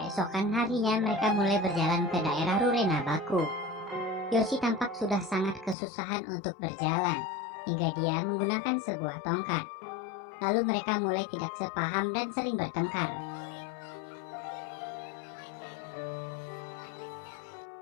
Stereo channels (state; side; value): drops out; right; at 5.8 s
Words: harinya mereka mulai berjalan ke daerah Rurena Baku. Yoshi tampak sudah sangat kesusahan untuk berjalan, hingga dia menggunakan sebuah tongkat. Lalu mereka mulai tidak sepaham dan sering bertengkar.